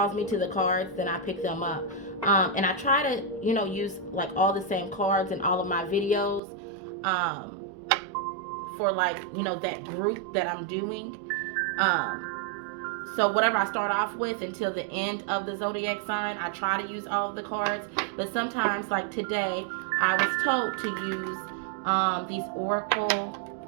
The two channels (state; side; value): drops out; left; at 6.4 s